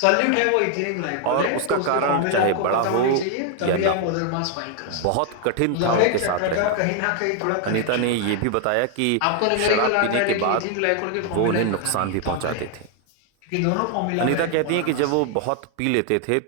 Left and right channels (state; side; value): different; both; correlation 0.00